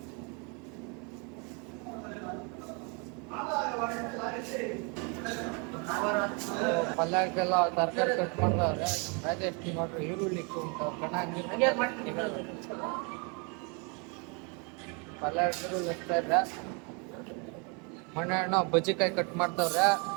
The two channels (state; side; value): quieter; left; 33.7 dB